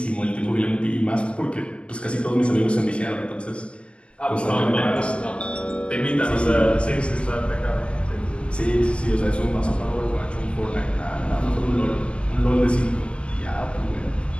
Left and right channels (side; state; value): right; late; 0.058 ms